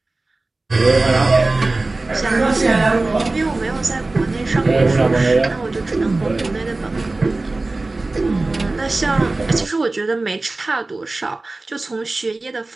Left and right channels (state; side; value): quieter; left; 3.2 dB